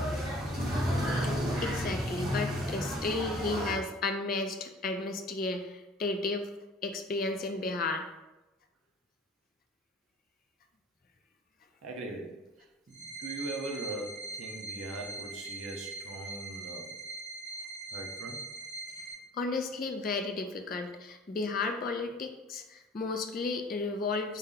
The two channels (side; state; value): both; normal; correlation 0.48